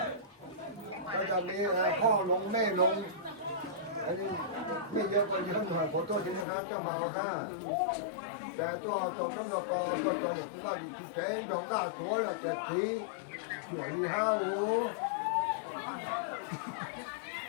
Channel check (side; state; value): right; drops out; at 6.5 s